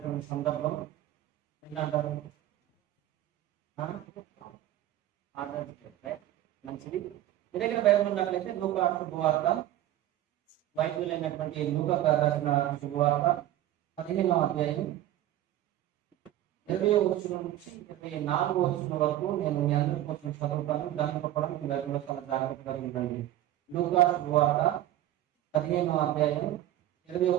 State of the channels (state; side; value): quieter; left; 13.4 dB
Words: సందర్భం ఏంటంటారు, మంచిది. మీ దగ్గర బైబిల్ ఉన్నట్లయితే లూకా శుభవార్త, వైద్యులైనటువంటి లూకా గారు రాసిన శుభవార్త 15వ అధ్యాయం 20వ వచనం నుంచి 24వ వచనం వరకు నేను మీ అందరి కోసం చదువుతాను. దాంతో కూడా మీ బైబిల్లో చాలా జాగ్రత్తగా ఉండండి. లూకా శుభవార్త 15వ అధ్యాయం 20వ